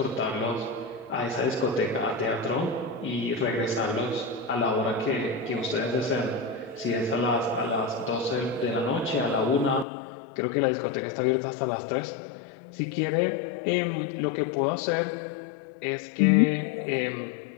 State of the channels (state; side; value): drops out; right; at 9.9 s